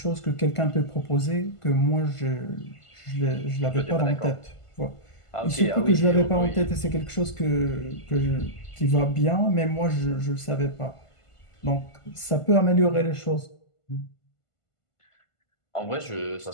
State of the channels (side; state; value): right; late; 1.5 ms